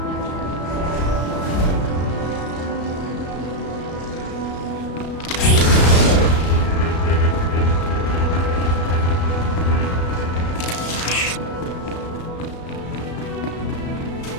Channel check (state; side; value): late; right; 35 ms